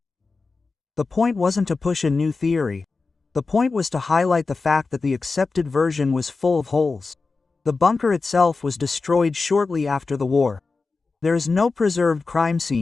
The point wasn't to push a new theory. The point was to highlight the fact that the accepted version was full of holes. The bunker itself was destroyed shortly after the war. There is no preserved crime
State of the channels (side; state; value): right; quieter; 4.1 dB